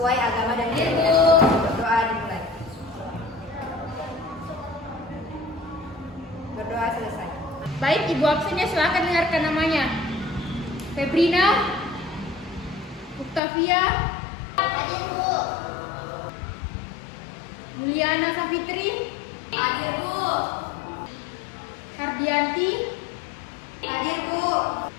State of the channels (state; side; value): drops out; right; at 13.4 s